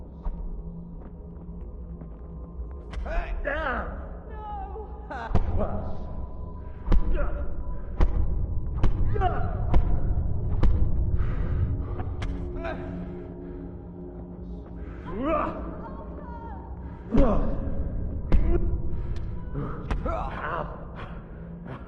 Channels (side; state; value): both; identical; correlation 1.00